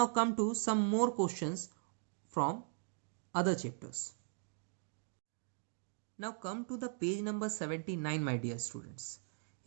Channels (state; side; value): silent; left; 52 dB below the other